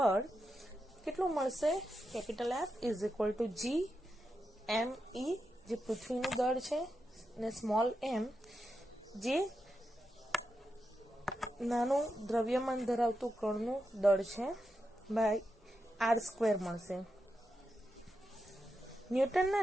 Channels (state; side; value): normal; both; correlation 0.87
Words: કેટલું મળશે? Capital F is equal to G M E, જે પૃથ્વીનું દળ છે, ને સ્મોલ એમ જે નાનું દ્રવ્યમાન ધરાવતું કણનું દળ છે, બાય r² મળશે.